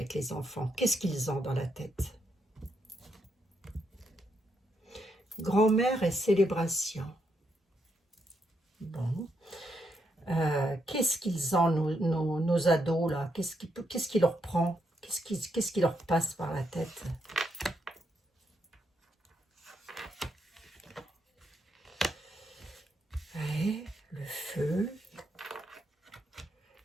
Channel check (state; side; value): normal; both; correlation 0.79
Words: les enfants? Qu'est-ce qu'ils ont dans la tête? Grand-mère et célébration. Bon. Qu'est-ce qu'ils ont, nos ados, là? Qu'est-ce qui leur prend? Qu'est-ce qui leur passe par la tête? Ouais, le feu.